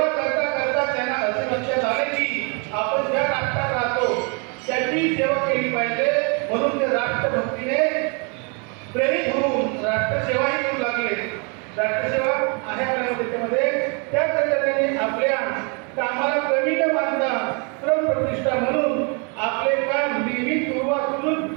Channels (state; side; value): quieter; left; 34.8 dB